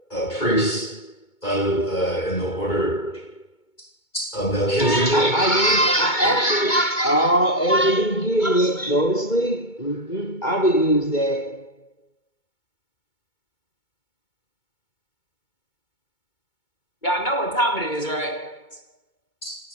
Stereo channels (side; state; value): right; late; 2.2 ms